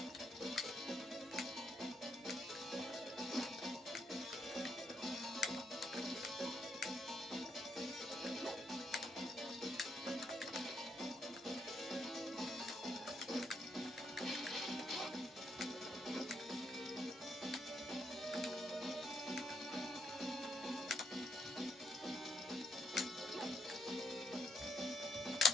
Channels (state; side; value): normal; both; correlation 0.75